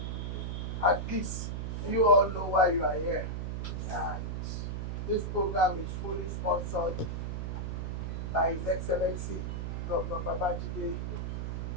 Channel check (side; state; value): right; noise; hum, 3 dB below the sound